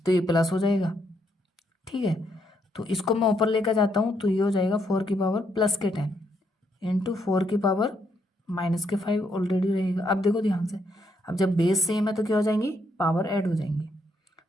ये प्लस हो जाएगा। ठीक है, तो इसको मैं ऊपर लेकर जाता हूँ, तो ये हो जाएगा 4 की पावर +10 इंटू 4 की पावर -5 ऑलरेडी रहेगा। अब देखो ध्यान से, अब जब बेस सेम है तो क्या हो जाएंगी, पावर ऐड हो जाएंगी।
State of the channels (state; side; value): normal; both; correlation 0.75